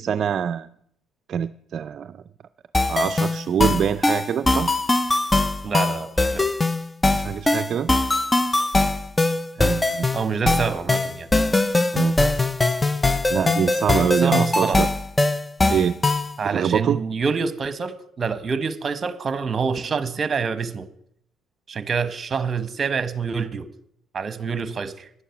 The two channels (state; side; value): normal; both; correlation 0.85